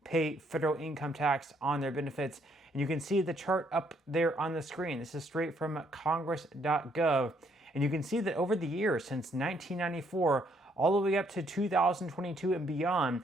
pay federal income tax on their benefits. And you can see the chart up there on the screen. This is straight from congress.gov. And you can see that over the years, since 1994, all the way up to 2022 and beyond,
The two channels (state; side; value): normal; both; correlation 0.70